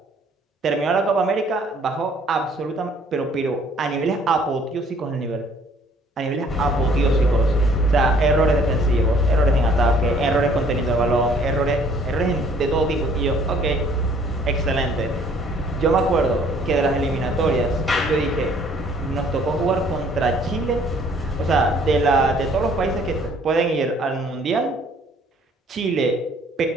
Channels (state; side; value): normal; both; correlation 0.59